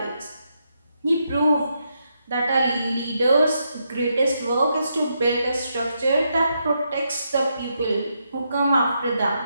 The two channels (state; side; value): inverted; both; correlation -0.81